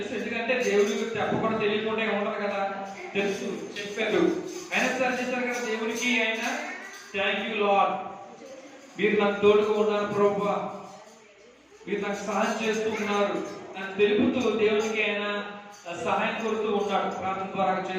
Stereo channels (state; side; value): identical; both; correlation 1.00